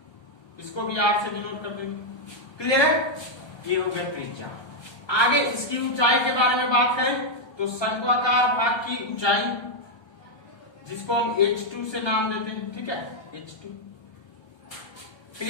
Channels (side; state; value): right; late; 1.3 ms